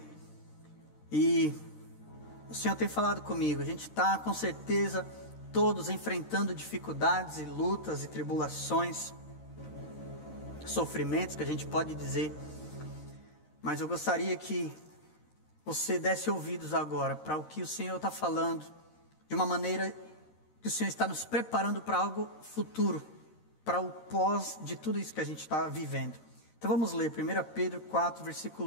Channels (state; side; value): late; right; 13 ms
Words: E o Senhor tem falado comigo, a gente está com certeza todos enfrentando dificuldades e lutas e tribulações, sofrimentos que a gente pode dizer, mas eu gostaria que você desse ouvidos agora para o que o Senhor está falando, de uma maneira que o Senhor está nos preparando para algo futuro, para o pós de tudo isso que a gente está vivendo. Então vamos ler 1 Pedro 4,